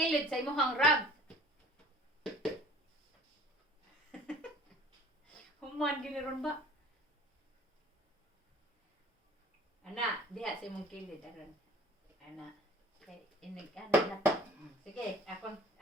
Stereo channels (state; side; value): normal; both; correlation 0.48